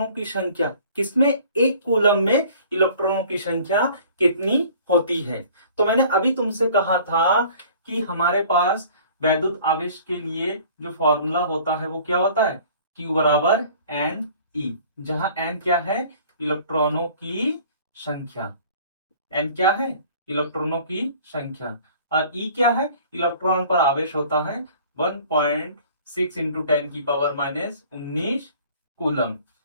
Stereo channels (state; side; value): inverted; both; correlation -0.50